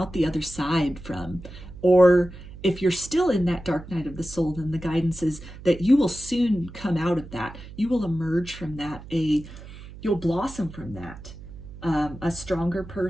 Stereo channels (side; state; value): right; noise; hum, 15 dB below the sound